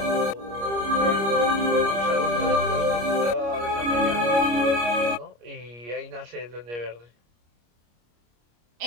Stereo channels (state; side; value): late; left; 25 ms